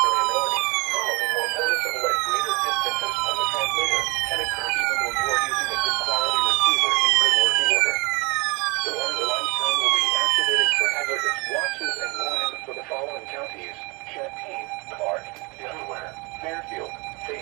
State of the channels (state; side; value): quieter; left; 27.3 dB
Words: following more noticeable at greater distances from the transmitter, can occur even though you are using a good quality receiver in good working order. The warning alarm tone will be activated for hazardous watches and warnings for the following counties: Champaign, Clark, Delaware, Fairfield,